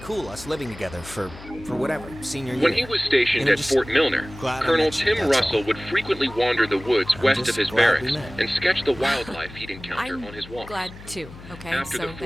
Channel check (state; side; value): noise; left; hum, 17 dB below the sound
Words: us living together for whatever, senior year. When he was stationed at Fort Milner, Colonel Tim Russell would frequently wander the woods west of his barracks and sketch the wildlife he'd encounter on his walks. Glad too, okay? After so the